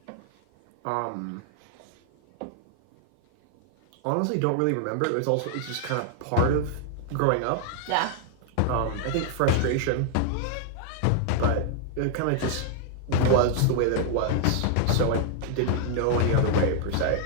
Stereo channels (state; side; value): different; both; correlation 0.00